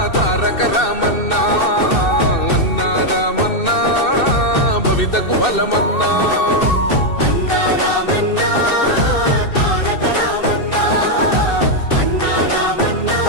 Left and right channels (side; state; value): right; late; 2.6 ms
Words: తారక రామన్నా, అన్నా రామన్నా భవితకు బలమన్నా.